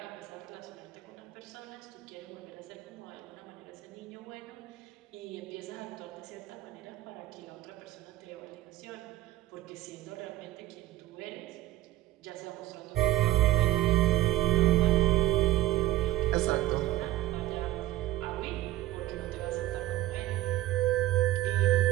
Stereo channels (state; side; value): quieter; left; 15.6 dB